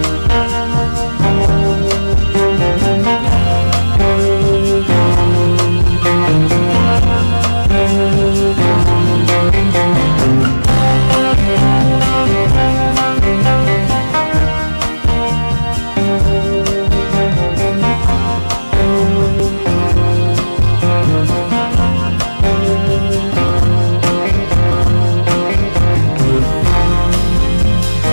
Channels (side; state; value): both; inverted; correlation -1.00